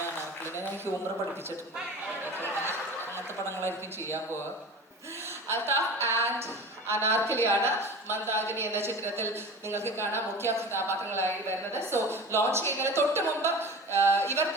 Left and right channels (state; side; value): normal; both; correlation 0.35